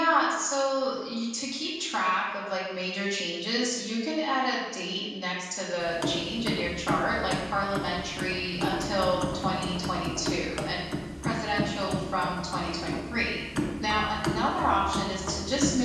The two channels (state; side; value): identical; both; correlation 1.00